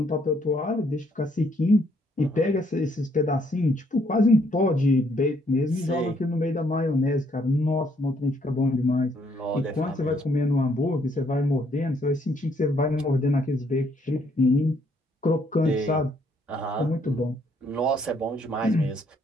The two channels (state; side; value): normal; both; correlation 0.68